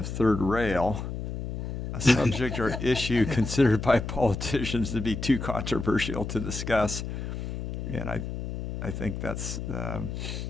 third rail, a subject or issue considered by politicians to be too controversial to discuss. And I think that's,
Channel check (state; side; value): noise; left; hum, 5 dB below the sound